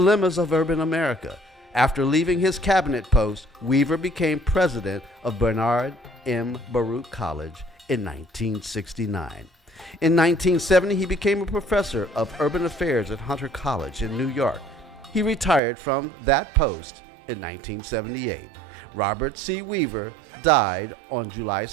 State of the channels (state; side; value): drops out; left; at 15.6 s